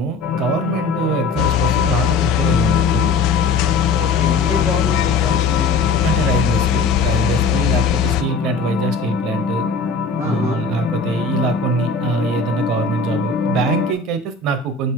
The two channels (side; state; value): right; quieter; 4.1 dB